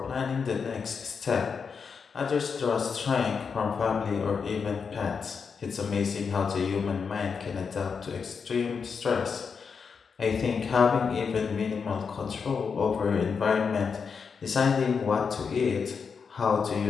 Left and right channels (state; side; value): quieter; right; 5.8 dB